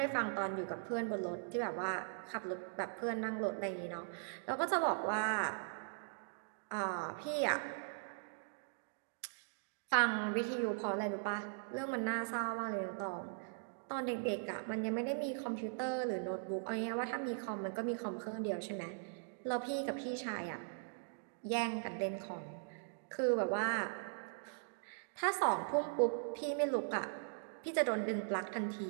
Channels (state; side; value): silent; left; digital silence